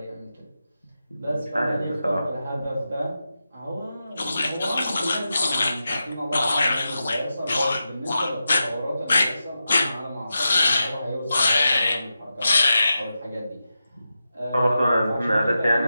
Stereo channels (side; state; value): both; inverted; correlation -0.90